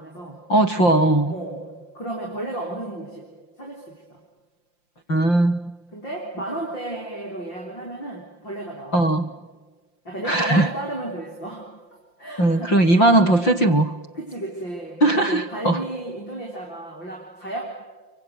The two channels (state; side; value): late; right; 5.8 ms